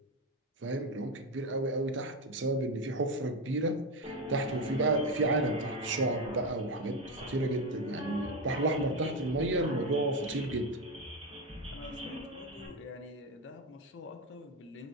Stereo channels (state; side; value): normal; both; correlation 0.13